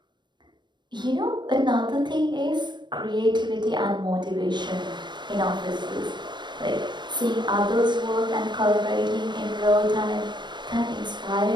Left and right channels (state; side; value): late; left; 0.22 ms